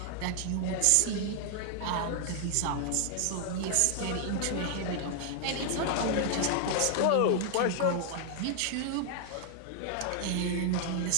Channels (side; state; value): both; different; correlation 0.00